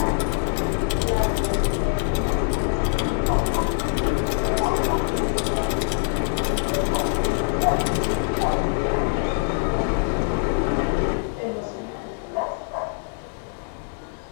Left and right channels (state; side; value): silent; right; digital silence